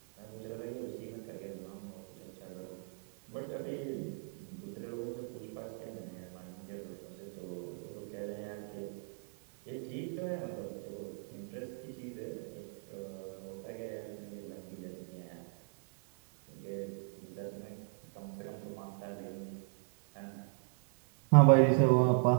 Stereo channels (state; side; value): silent; left; 52 dB below the other